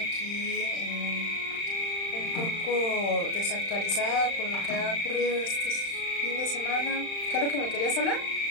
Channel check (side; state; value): right; late; 35 ms